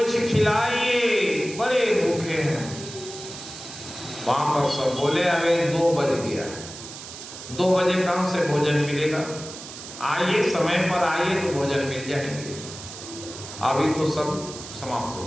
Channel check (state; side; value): noise; right; hiss, 12 dB below the sound